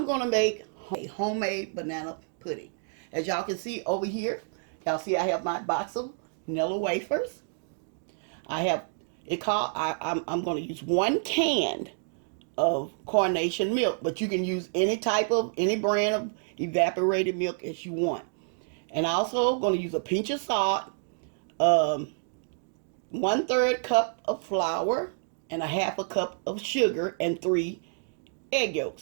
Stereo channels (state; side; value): silent; left; 59 dB below the other